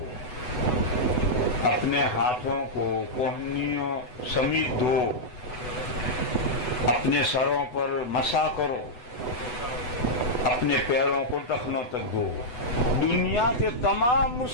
اپنے ہاتھوں کو کوہنیوں سمیت دھو، اپنے سروں پر مسح کرو، اپنے پیروں کو ٹخنوں تک دھو۔ دنیا کے تمام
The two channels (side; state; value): right; late; 8.0 ms